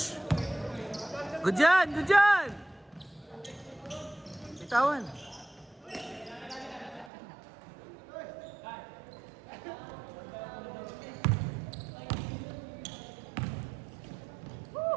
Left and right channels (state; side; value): drops out; left; at 7.1 s